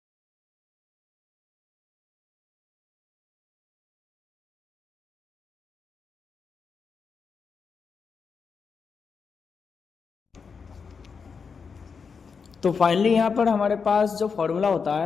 तो फाइनली यहाँ पर हमारे पास जो फॉर्मूला होता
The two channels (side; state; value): right; quieter; 5.7 dB